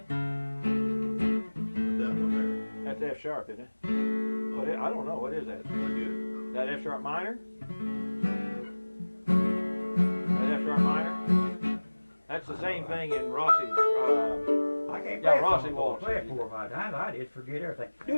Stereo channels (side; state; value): both; inverted; correlation -1.00